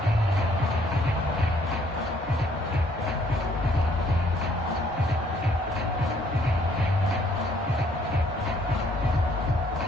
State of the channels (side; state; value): both; normal; correlation 0.64